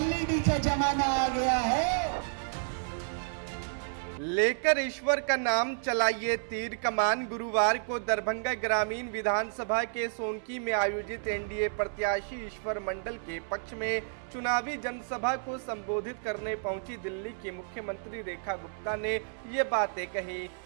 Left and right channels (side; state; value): left; silent; 57 dB below the other